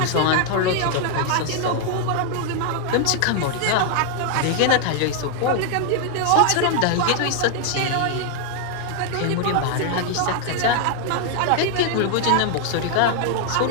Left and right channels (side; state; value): both; different; correlation 0.00